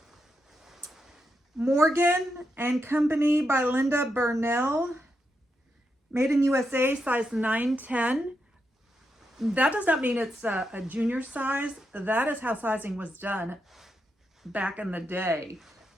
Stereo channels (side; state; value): both; normal; correlation 0.84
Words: Morgan and Company by Linda Burnell. Made in USA, size 9-10. That does not mean it's a junior size. That is how sizing was done back in the day.